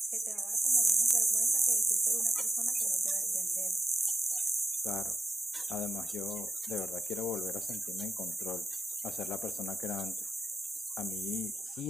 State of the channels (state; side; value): normal; both; correlation 0.91